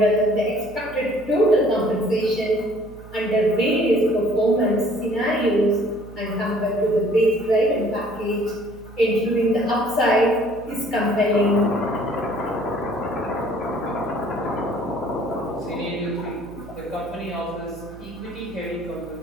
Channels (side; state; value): right; noise; hum, 18 dB below the sound